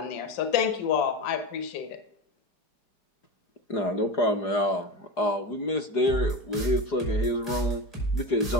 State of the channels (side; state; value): right; late; 4.8 ms